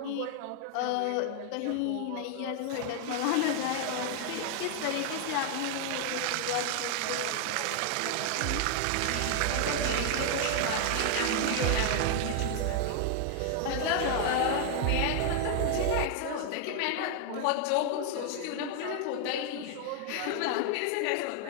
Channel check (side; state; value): both; different; correlation 0.00